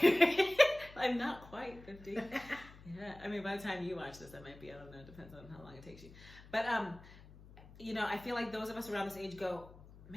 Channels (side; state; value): left; noise; hum, 20 dB below the sound